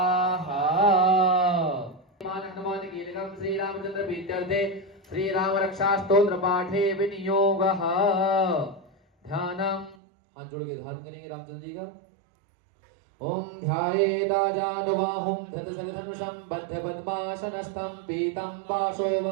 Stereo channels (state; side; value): drops out; left; at 10.0 s